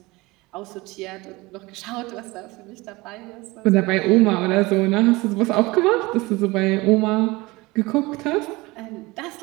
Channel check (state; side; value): quieter; left; 22.3 dB